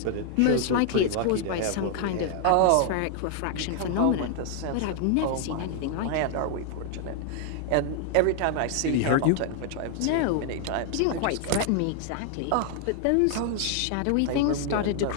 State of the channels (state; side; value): different; both; correlation 0.00